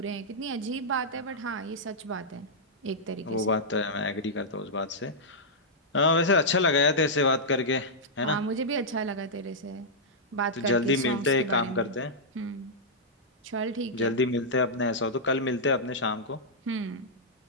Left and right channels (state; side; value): normal; both; correlation -0.09